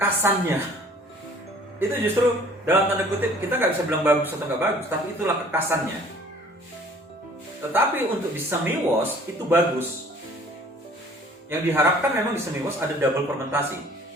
Itu justru dalam tanda kutip kita nggak bisa bilang bagus atau nggak bagus, tapi itulah kekasannya. Tetapi untuk di semi wash itu bagus. Yang diharapkan memang di semi wash ada double fermentasi.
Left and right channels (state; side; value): normal; both; correlation 0.52